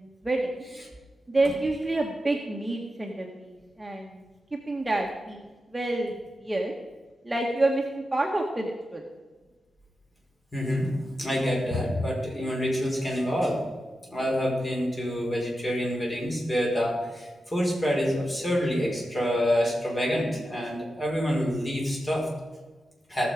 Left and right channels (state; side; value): normal; both; correlation 0.90